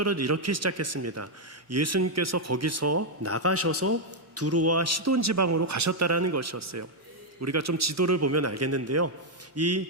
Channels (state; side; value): normal; both; correlation -0.01